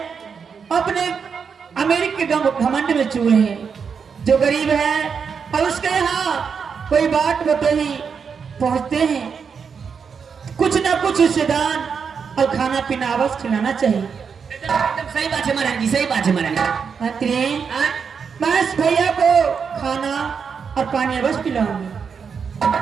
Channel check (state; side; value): quieter; left; 6.2 dB